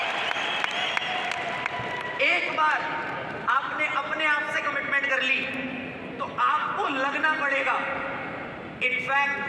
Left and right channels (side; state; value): both; identical; correlation 1.00